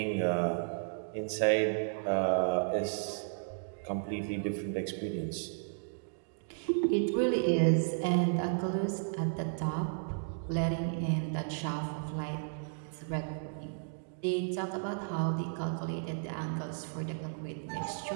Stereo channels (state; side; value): silent; left; digital silence